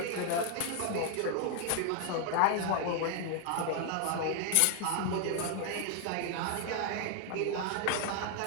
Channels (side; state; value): both; different; correlation 0.00